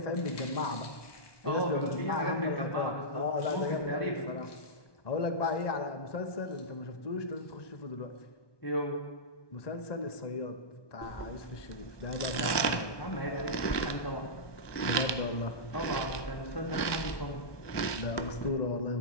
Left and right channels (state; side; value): late; right; 1.2 ms